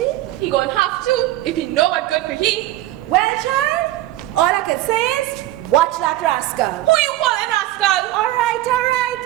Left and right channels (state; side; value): quieter; left; 15.6 dB